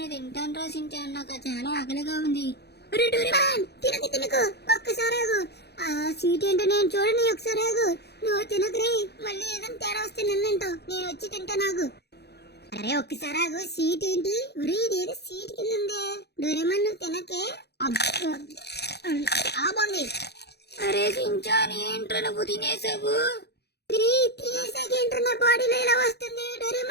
తింటాను రా సించాన్, నాకు చాలా ఆకలిగా ఉంది. అరే డోరేమాన్ తినకు ఒక్కసారి ఆగు. ఆ స్వీట్ ఏంటో నేను చూడని ఒకసారి ఆగు. నువ్వు తినకురే, మళ్ళీ ఏదైనా తేడా వస్తే నన్నంటావు. నేను వచ్చి తింటా. నాకు అరే ఒక్కసారి ఆగు. సీట్ ఏంటి? ఇదేదో సీట్ కింద ఉంది. డోరేమాన్ నువ్వు తినకే. బాగుంది. అరే సించాన్ ఏంట్రా నువ్వు తినేసావు? తినేసాకేంట్రా నా బాడీలో ఇలా వస్తుంది.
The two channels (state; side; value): late; right; 0.48 ms